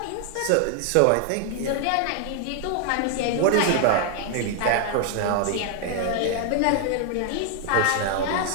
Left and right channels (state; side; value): different; both; correlation 0.00